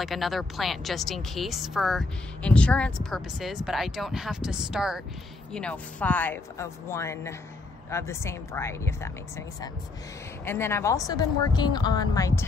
another plant just in case for insurance purposes, but I don't have to start, you know, 5 of one of the same variety, if that makes any sense. And then I've also been working on my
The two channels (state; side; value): quieter; right; 3.4 dB